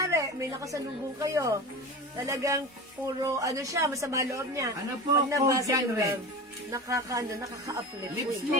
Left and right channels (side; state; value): both; normal; correlation 0.30